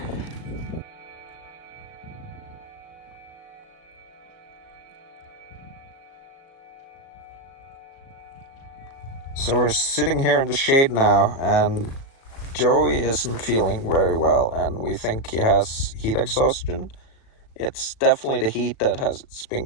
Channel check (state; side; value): late; right; 36 ms